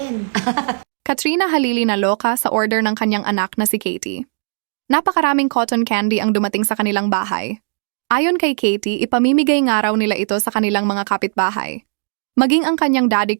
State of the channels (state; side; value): silent; left; digital silence